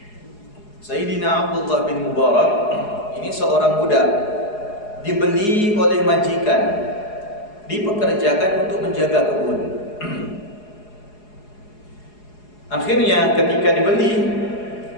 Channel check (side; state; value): right; late; 4.8 ms